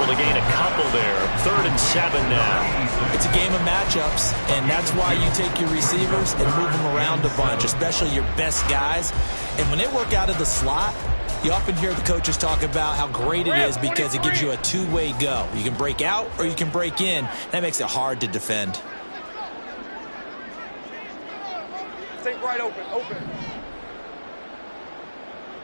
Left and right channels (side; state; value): both; inverted; correlation -1.00